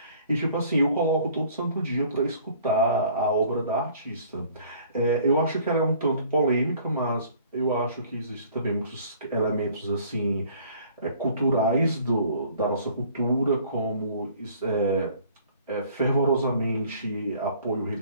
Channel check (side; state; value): both; inverted; correlation -0.54